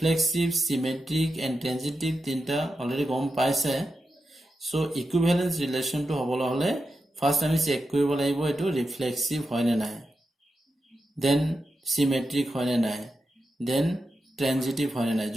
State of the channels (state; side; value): normal; both; correlation 0.89